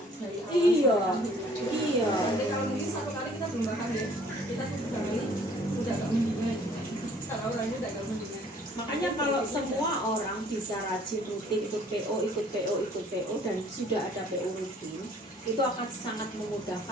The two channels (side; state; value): both; normal; correlation 0.57